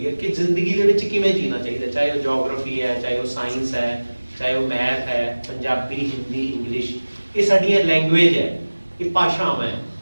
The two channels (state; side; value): inverted; both; correlation -1.00